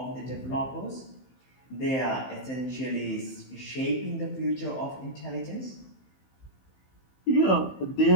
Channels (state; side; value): late; right; 15 ms